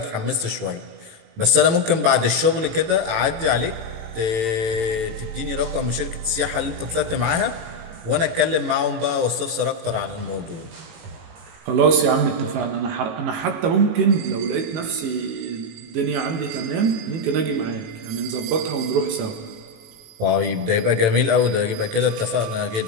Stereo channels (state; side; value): late; left; 18 ms